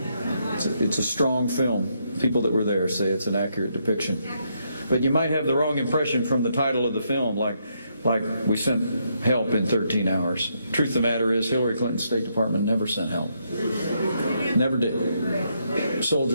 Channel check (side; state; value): both; inverted; correlation -0.77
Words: strong film. People that were there say it's an accurate depiction. But you might have the wrong impression from the title of the film, like we sent help in 13 hours. Truth of the matter is, Hillary Clinton's State Department never sent help. Never did.